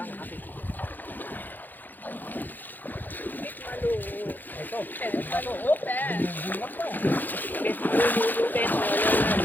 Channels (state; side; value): late; right; 0.087 ms